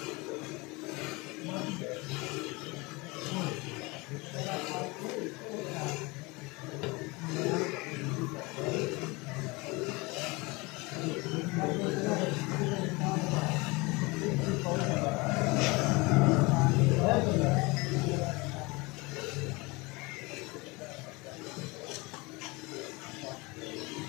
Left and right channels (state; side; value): quieter; right; 25.2 dB